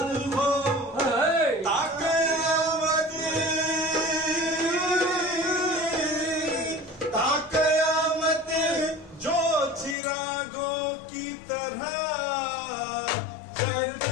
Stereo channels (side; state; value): right; drops out; at 10.0 s